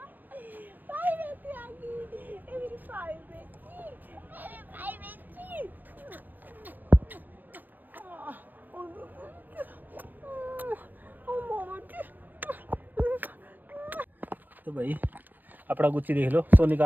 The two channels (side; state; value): left; late; 0.090 ms